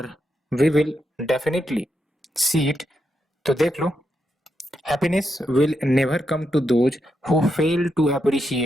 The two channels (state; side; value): normal; both; correlation 0.83